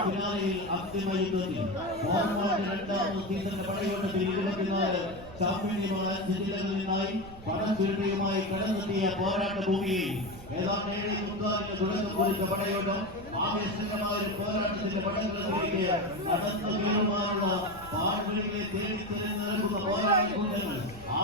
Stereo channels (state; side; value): noise; right; rumble, 16 dB below the sound